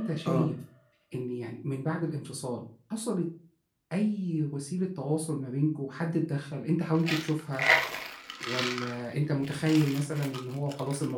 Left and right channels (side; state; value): both; identical; correlation 1.00